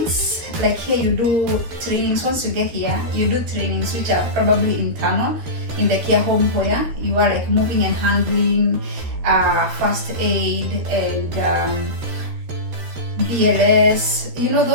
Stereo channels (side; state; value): left; late; 13 ms